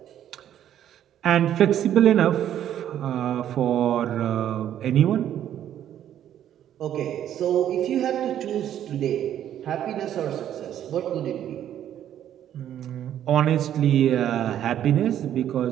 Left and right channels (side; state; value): left; quieter; 10.8 dB